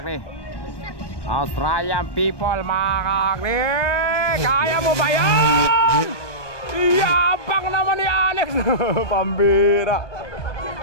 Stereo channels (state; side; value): late; right; 1.2 ms